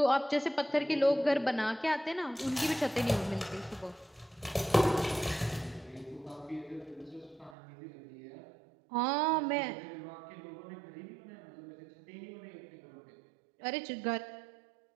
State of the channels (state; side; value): drops out; left; at 7.6 s